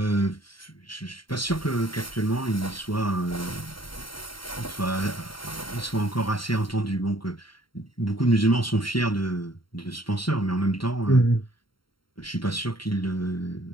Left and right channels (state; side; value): late; right; 0.73 ms